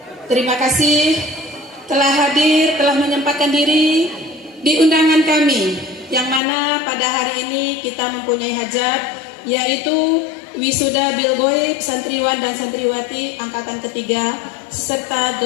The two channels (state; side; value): drops out; right; at 6.4 s